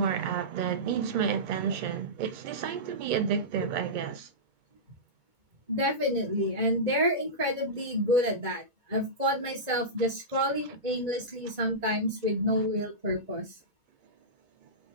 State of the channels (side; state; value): left; late; 2.2 ms